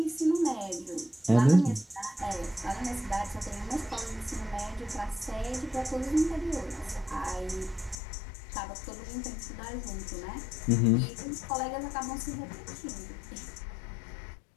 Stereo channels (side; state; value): right; drops out; at 8.0 s